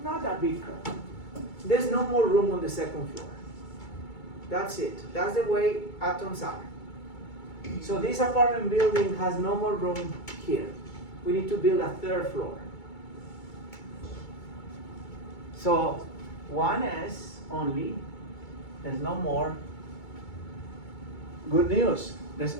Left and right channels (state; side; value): late; right; 2.3 ms